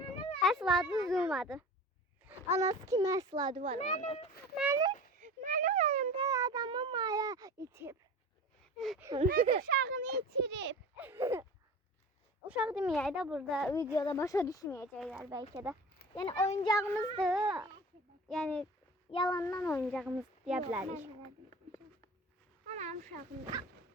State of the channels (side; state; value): both; normal; correlation 0.37